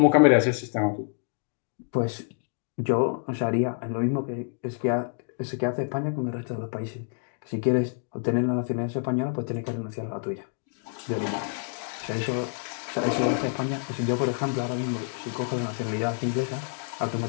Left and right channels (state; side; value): silent; right; 59 dB below the other